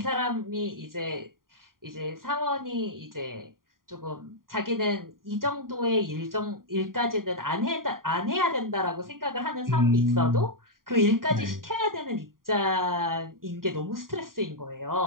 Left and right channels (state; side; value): late; left; 0.91 ms